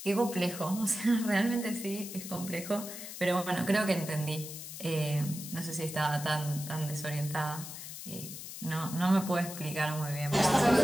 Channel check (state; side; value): noise; left; hiss, 10 dB below the sound